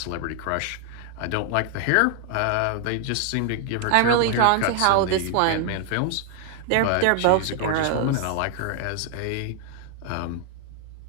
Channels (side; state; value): both; different; correlation 0.00